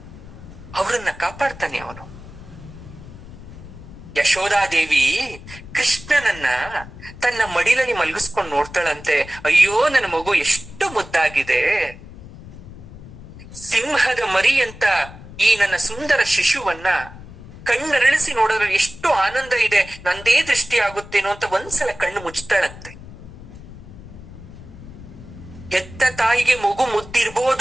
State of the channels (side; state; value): left; noise; rumble, 16 dB below the sound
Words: ಅವರನ್ನ ಕಾಪಾಡ್ತಾನೆ ಅವನು. ಯಶೋಧಾದೇವಿ ಕೃಷ್ಣನನ್ನ ತನ್ನ ಮಡಿಲಲ್ಲಿ ಮಲಗಿಸ್ಕೊಂಡು ನೋಡ್ತಾಳಂತೆ. ಅಯ್ಯೋ ನನ್ನ ಮಗು ಎಷ್ಟು ಮುದ್ದಾಗಿದೆ, ಸಿಂಹದ ಮರಿ ಅಂತ ಈ ನನ್ನ ಸುಂದರ ಶಿಶುವನ್ನ ಕಣ್ಣರಳಿಸಿ ನೋಡಿದ್ರೆ ಎಷ್ಟು ಆನಂದ ಇದೆ, ನಂದೇ ದೃಷ್ಟಿ ಆಗುತ್ತೇನೋ ಅಂತ ಒಂದ್ಸಲ ಕಣ್ಣು ಮುಚ್ತಾಳಂತೆ. ಹೆತ್ತ ತಾಯಿಗೆ ಮಗು